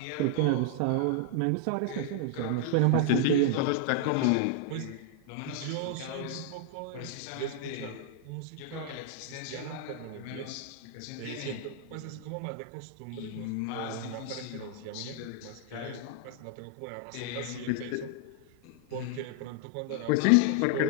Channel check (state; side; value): different; both; correlation 0.00